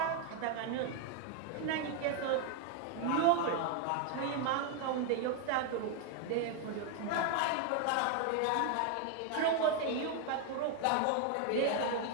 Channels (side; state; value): both; different; correlation 0.01